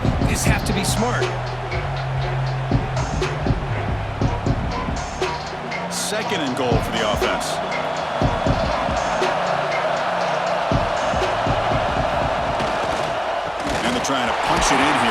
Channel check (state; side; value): identical; both; correlation 1.00